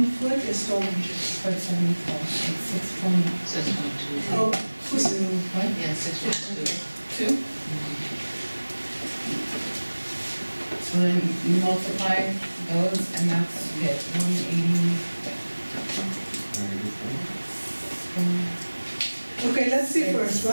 foot is 12 inches. 74, it's 6.2. Oh, who's What? Yeah, 6.2. 2? So then you multiply those, and that's it, 180. Okay, let's see first,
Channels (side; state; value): both; inverted; correlation -1.00